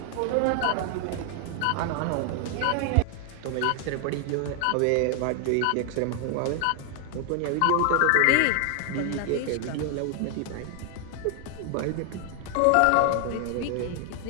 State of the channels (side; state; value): both; different; correlation 0.00